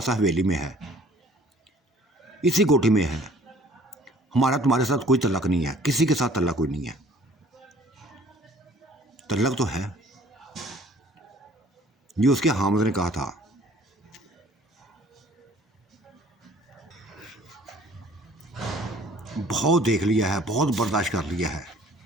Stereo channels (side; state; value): both; normal; correlation 0.54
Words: हवेली में है, इसी कोठी में है। हमारा तुम्हारे साथ कोई तल्लक नहीं है, किसी के साथ तल्लक कोई नहीं है। तल्लक तो है, ये उसके हामिद ने कहा था। बहुत देख लिया है, बहुत बर्दाश्त कर लिया है,